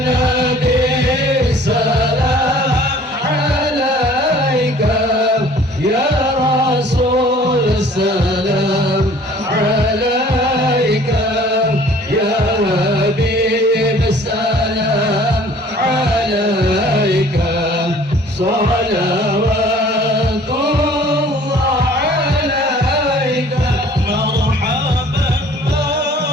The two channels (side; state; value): both; normal; correlation 0.52